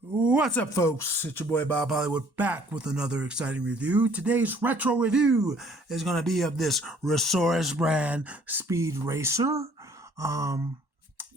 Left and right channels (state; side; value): late; left; 1.1 ms